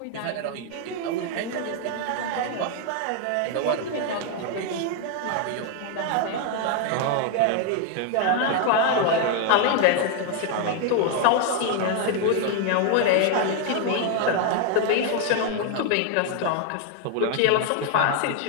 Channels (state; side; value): different; both; correlation 0.00